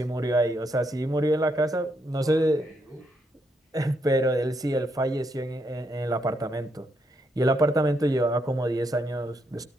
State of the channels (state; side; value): normal; both; correlation 0.78